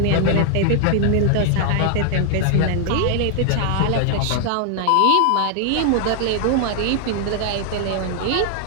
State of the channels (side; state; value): both; different; correlation 0.00